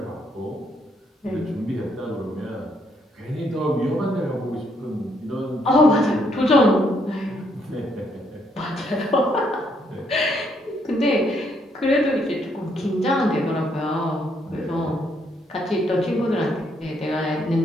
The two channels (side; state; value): both; normal; correlation 0.72